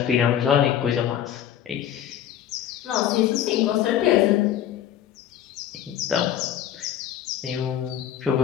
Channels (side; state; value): right; quieter; 10.5 dB